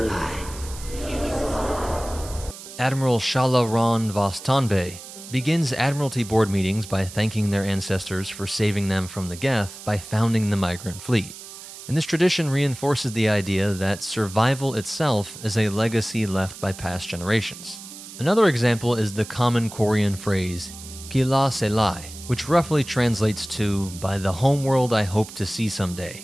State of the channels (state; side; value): noise; right; hiss, 14 dB below the sound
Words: Admiral Shala Ron Vostanbe begins Admiralty Board meetings by thanking their ancestors for saving them from the Geth by founding the Migrant fleet. And this tradition reinforces the idea that survival itself is a legacy left by past generations. Another example is the common Quarian phrase, Kila Selai, which roughly translates to, by the homeworld I hope to see